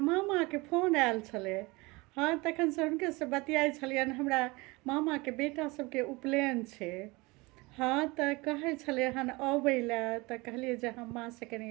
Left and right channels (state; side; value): quieter; left; 24.1 dB